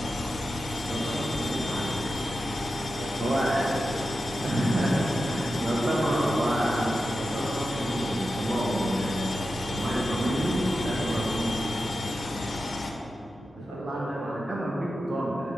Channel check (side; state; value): both; normal; correlation 0.91